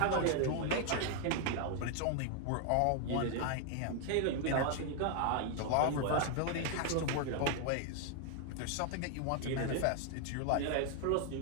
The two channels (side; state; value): both; different; correlation 0.00